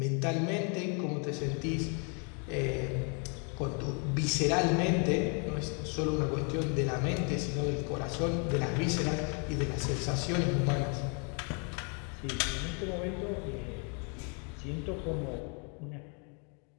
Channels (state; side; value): quieter; right; 37.4 dB